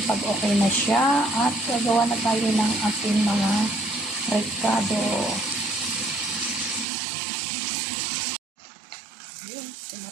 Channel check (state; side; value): drops out; left; at 6.9 s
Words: pag okay na siya at gagawa na tayo ng ating mga recado. Yun,